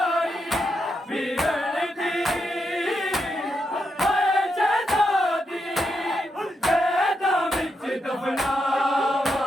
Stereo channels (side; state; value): both; normal; correlation 0.83